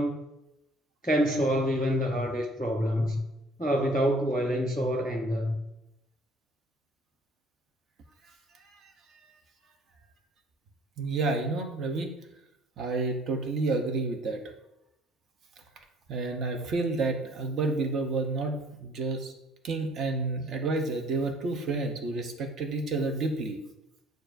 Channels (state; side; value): normal; both; correlation 0.55